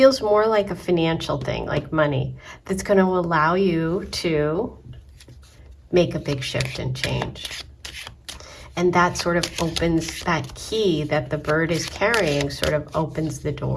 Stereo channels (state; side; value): identical; both; correlation 1.00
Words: more like a financial thing, like money, that's going to allow you to make a big shift and change. And that sort of opens, that key that the bird is carrying sort of opens the